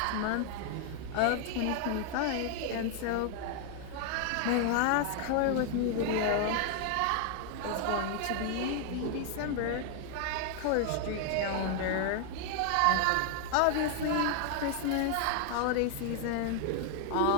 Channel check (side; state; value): both; different; correlation 0.00